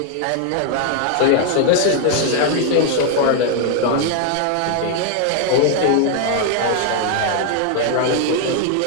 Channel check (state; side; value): different; both; correlation 0.00